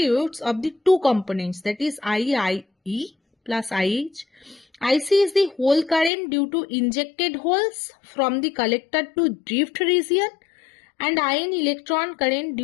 of the two components, that is IE plus IH. IC is the hole current due to injected holes from the collector to drift region, and IN electron current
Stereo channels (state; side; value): drops out; right; at 6.1 s